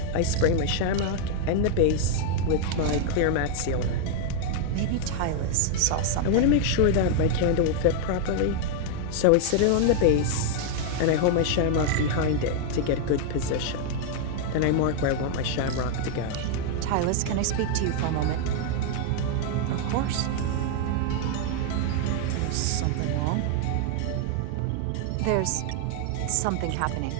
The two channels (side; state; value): both; different; correlation 0.00